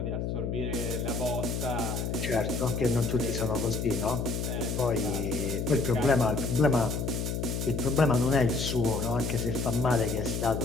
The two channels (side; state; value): left; noise; hum, 2 dB below the sound